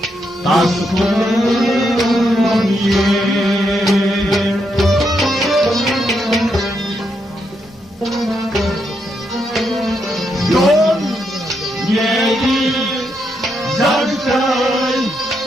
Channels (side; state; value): both; normal; correlation 0.80